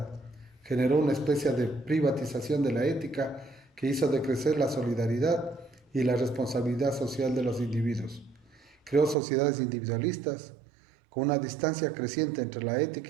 generó una especie de privatización de la ética que hizo decrecer la solidaridad y la responsabilidad social de los individuos. Creó sociedades individualistas, con una distancia creciente entre la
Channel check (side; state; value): left; drops out; at 9.2 s